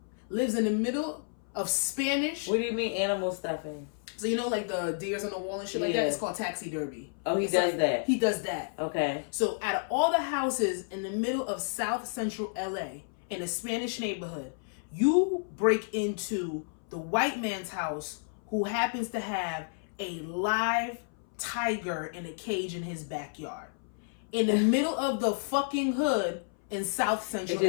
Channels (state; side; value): silent; right; 57 dB below the other